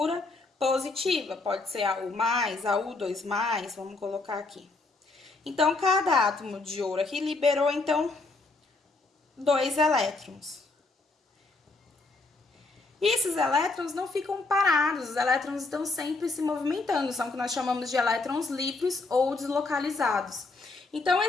positiva. Pode ser AU+, AU2+, vamos colocar aqui. Então, cada átomo de ouro aqui liberou, então, 2 elétrons. E esses elétrons não ficam parados, os elétrons estão sempre se movimentando, são o que nós chamamos de elétrons livres ou deslocalizados. Então,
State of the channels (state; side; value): quieter; right; 3.5 dB